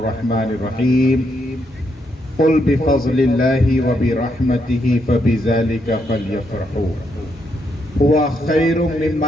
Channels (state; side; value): normal; both; correlation 0.78